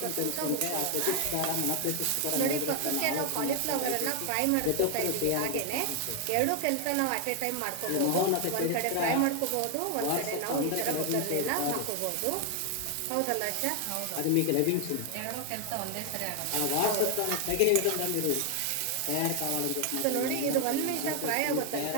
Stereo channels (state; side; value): different; both; correlation 0.00